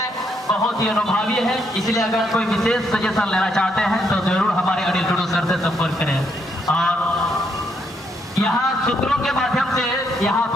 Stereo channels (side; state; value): both; normal; correlation 0.75